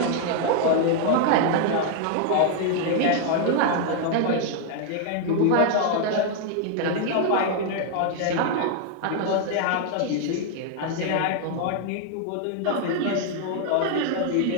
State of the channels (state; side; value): different; both; correlation 0.00